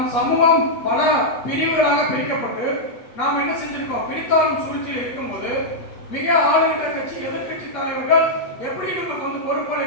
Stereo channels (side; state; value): right; late; 8.5 ms